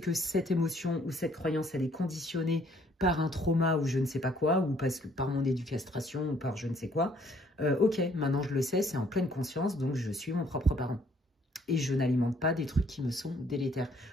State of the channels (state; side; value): normal; both; correlation 0.63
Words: cette émotion ou cette croyance, elle est conditionnée par un trauma ou je ne sais pas quoi, ou parce que par mon éducation ou par je ne sais quoi. Ok, maintenant je le sais, c'est en pleine conscience, donc je suis mon propre parent. Et je n'alimente pas des trucs qui me sont délétères.